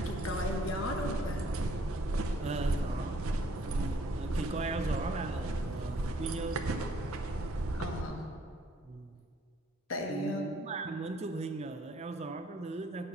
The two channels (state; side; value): normal; both; correlation 0.63